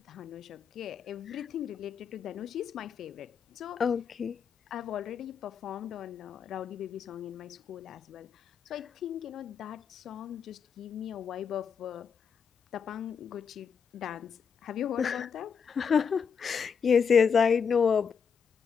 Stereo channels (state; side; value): quieter; right; 6.6 dB